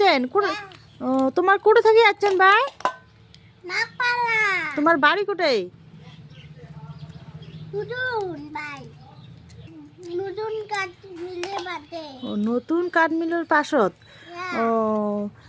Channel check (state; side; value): identical; both; correlation 1.00